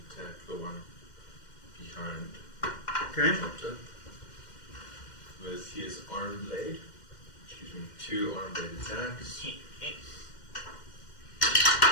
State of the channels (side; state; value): right; late; 2.1 ms